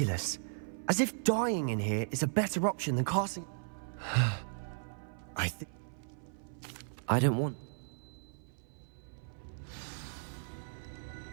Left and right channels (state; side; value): silent; left; 54 dB below the other